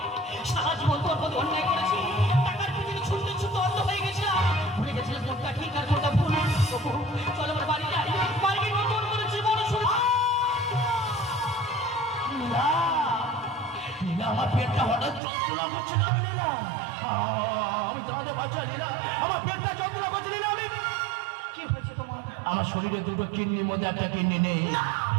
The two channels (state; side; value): drops out; left; at 15.2 s